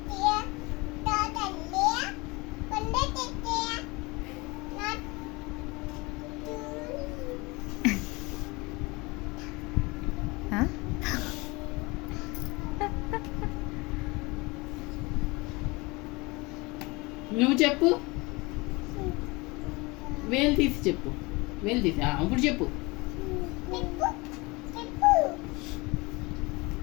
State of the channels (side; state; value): right; quieter; 24.7 dB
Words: నువ్వు చెప్పు. వేలు తీసి చెప్పు. వేలు తీసి ఇప్పుడు చెప్పు.